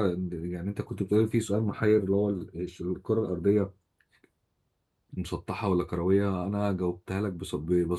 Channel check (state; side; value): identical; both; correlation 1.00